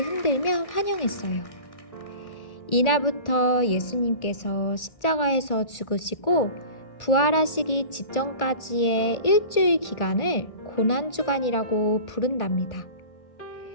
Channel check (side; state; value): right; late; 1.8 ms